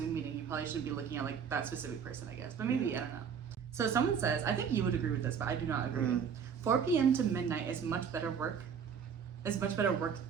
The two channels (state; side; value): quieter; left; 7.0 dB